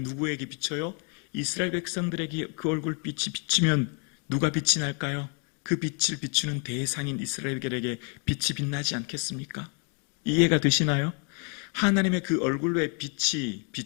비쳐요? 이스라엘 백성들에게 그 얼굴빛이 비치면 누가 빛이 날까요? 그 빛을 비추는 대상인 이스라엘에게 빛이 빛나지 않겠습니까? 이해가 되시나요? 하나님의 그 얼굴에 빛이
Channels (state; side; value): quieter; right; 37.9 dB